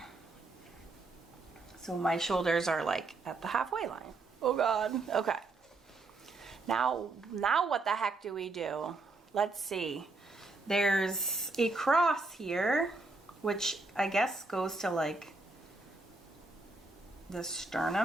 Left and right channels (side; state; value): left; quieter; 3.4 dB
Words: So my shoulders are like at the halfway line. Oh God. Okay. Now what the heck do we do? Let's see. There's a cross here, which I guess goes to like the